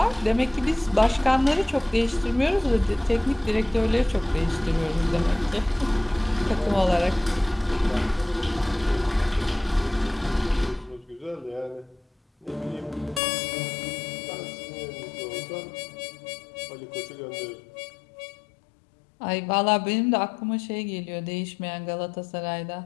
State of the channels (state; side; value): drops out; right; at 13.2 s